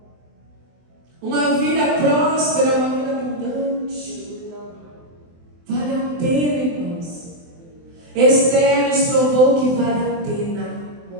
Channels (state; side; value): late; left; 24 ms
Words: Uma vida próspera, uma vida abundante. Vale a pena, irmãos. Esther nos provou que vale a pena.